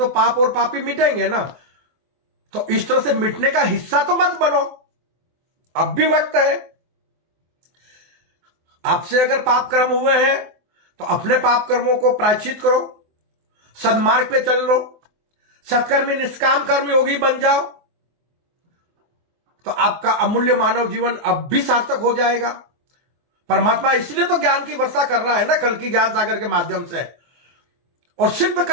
पाप और पापी मिटेंगे ना। तो इस तरह से मिटने का हिस्सा तो मत बनो, अब भी वक्त है। आपसे अगर पाप कर्म हुए हैं तो अपने पाप कर्मों को प्रायश्चित करो, सदमार्ग पे चल लो, सत्कर्मी निष्काम कर्म योगी बन जाओ, तो आपका अमूल्य मानव जीवन अब भी सार्थक हो जाएगा। परमात्मा इसलिए तो ज्ञान की वर्षा कर रहा है ना, कल की ज्ञान सागर के माध्यम से। और सिर्फ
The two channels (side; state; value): left; late; 24 ms